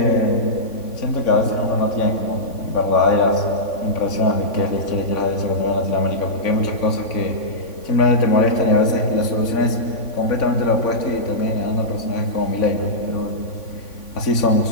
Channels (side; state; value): right; late; 3.5 ms